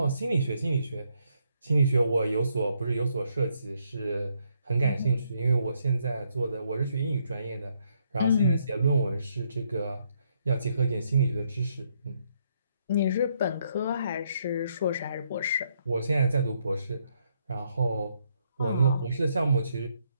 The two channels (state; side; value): inverted; both; correlation -0.74